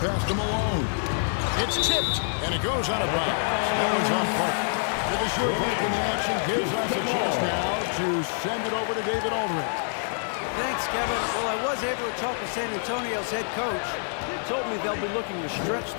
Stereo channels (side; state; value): right; silent; 61 dB below the other